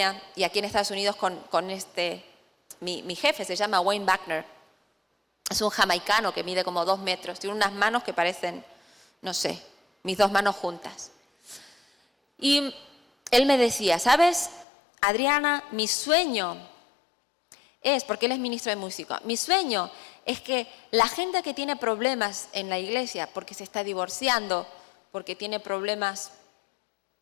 y aquí en Estados Unidos con mi jefe, se llama Wayne Buckner. Es un jamaicano que mide como 2 metros, tiene unas manos que parecen, no sé, mis 2 manos juntas. Y él me decía, ¿sabes, Adriana? Mi sueño es, porque él es ministro de música, mi sueño es que la gente que tiene problemas en la iglesia, porque se está divorciando, porque tiene problemas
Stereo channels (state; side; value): drops out; right; at 14.7 s